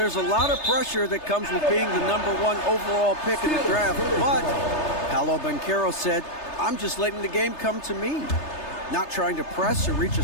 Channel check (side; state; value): right; late; 3.3 ms